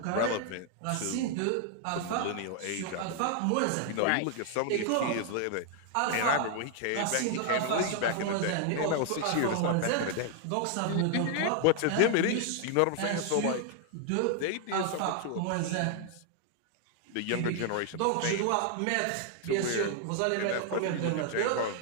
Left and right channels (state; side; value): different; both; correlation 0.00